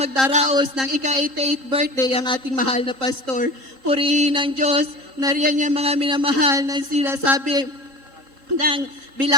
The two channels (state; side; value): late; left; 3.8 ms